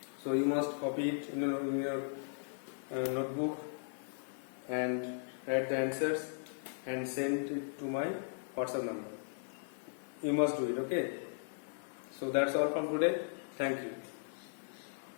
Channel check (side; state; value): right; silent; 53 dB below the other